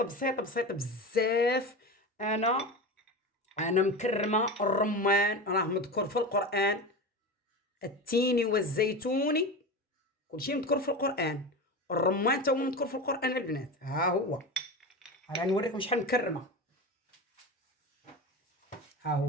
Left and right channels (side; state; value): both; normal; correlation 0.25